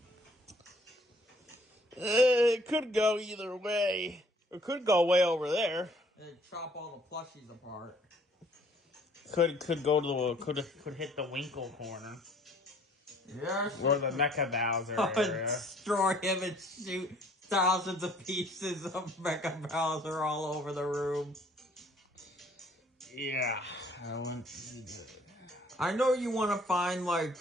It could go either way. It could go way over there. It'd chop all the plushies apart. Could go to the could hit the Winkle corner. Yes. Or the Mecha Bowser area. Destroy him and shoot thousands of pieces of Mecha Bowser all over the room. Yeah, that wouldn't be good. I know you want to find, like,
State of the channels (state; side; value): normal; both; correlation 0.59